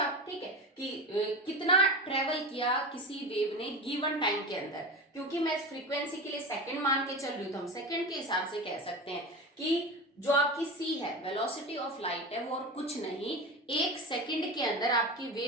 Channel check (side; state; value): both; normal; correlation 0.25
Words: आप, ठीक है, कि कितना ट्रेवल किया किसी वेव ने गिवन टाइम के अंदर। क्योंकि मैं इस फ्रीक्वेंसी के लिए सेकंड मान के चल रही हूँ, तो हम सेकंड के हिसाब से कह सकते हैं कि जो आपकी c है, वेलोसिटी ऑफ लाइट है, वो और कुछ नहीं, एक सेकंड के अंदर आपकी